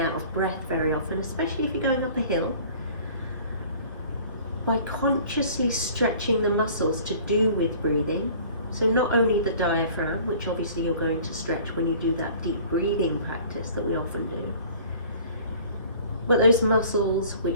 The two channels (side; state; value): both; inverted; correlation -0.49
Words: of breath very often, especially if you're going up a hill, by consciously stretching the muscles to do with breathing, so not only the diaphragm, which obviously you're going to stretch when you do that deep breathing practice that we often do, but those muscles